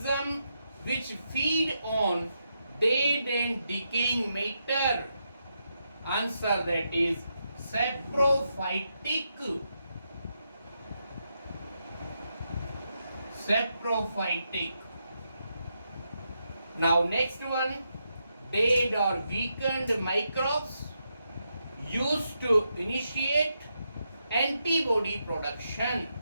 which feed on dead and decaying matter, Answer, that is saprophytic. Saprophytic. Now next one, dead or weakened microbes used to initiate antibody production.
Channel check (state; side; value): inverted; both; correlation -0.83